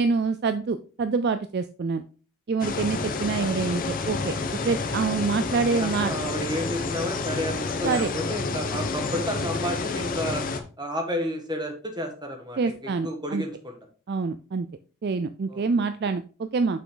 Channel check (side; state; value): both; normal; correlation 0.38